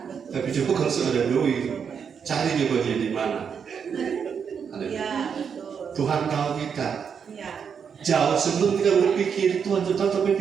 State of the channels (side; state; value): left; quieter; 6.9 dB